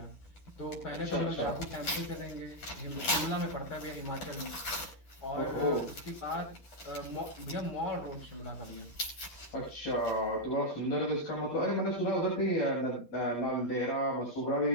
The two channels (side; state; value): right; late; 9.2 ms